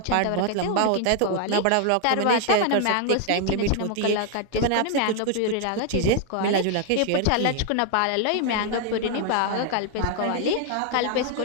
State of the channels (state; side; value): different; both; correlation 0.00